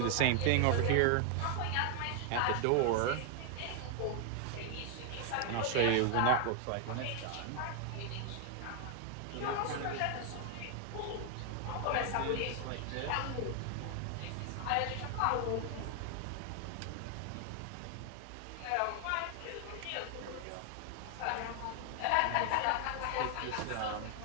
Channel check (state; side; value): different; both; correlation 0.00